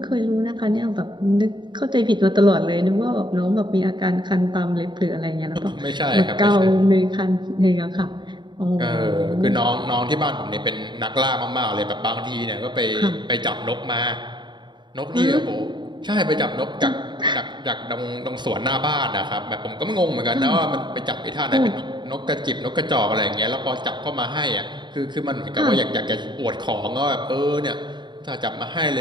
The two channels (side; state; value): left; late; 0.22 ms